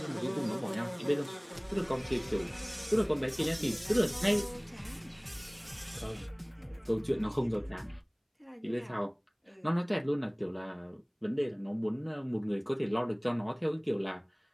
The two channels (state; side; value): identical; both; correlation 1.00